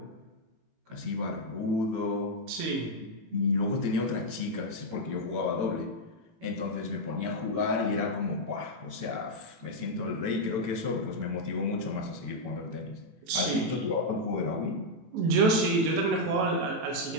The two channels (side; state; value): left; late; 18 ms